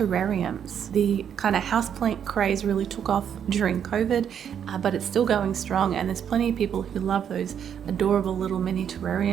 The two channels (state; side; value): quieter; left; 8.5 dB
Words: The kind of houseplant craze really took off during COVID, but it's still going strong, and there's plenty of people who love those adorable little mini